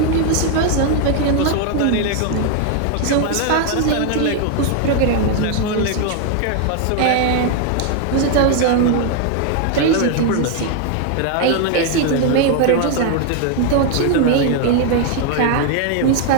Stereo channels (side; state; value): both; different; correlation 0.00